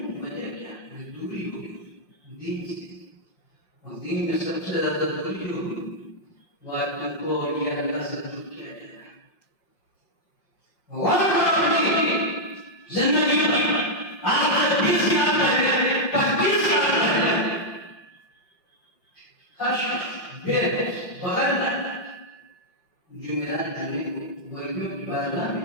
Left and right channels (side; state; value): right; late; 5.4 ms